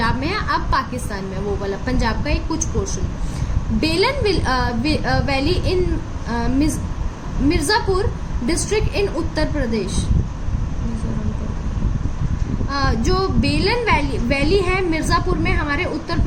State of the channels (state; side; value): identical; both; correlation 1.00